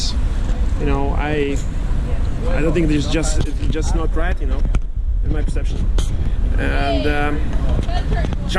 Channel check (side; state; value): both; identical; correlation 1.00